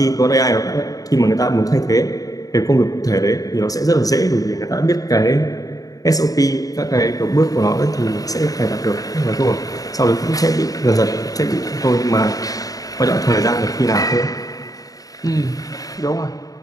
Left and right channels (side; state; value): right; late; 0.17 ms